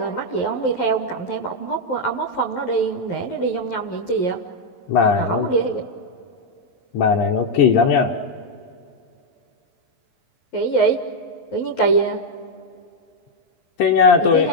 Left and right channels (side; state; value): right; late; 11 ms